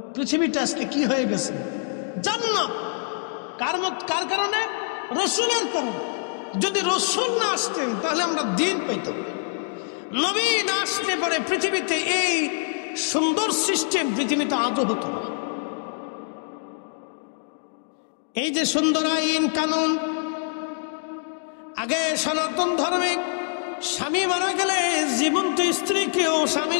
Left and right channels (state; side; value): silent; right; digital silence